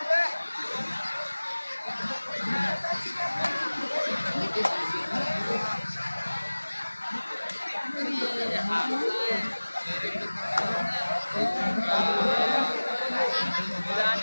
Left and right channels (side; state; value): both; inverted; correlation -1.00